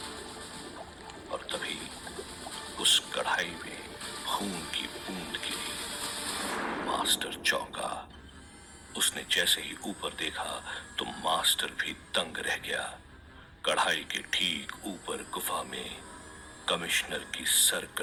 और तभी उस कढ़ाई में खून की बूंद गिरी। मास्टर चौंका। उसने जैसे ही ऊपर देखा तो मास्टर भी दंग रह गया। कढ़ाई के ठीक ऊपर गुफा में कमिश्नर की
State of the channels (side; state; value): both; identical; correlation 1.00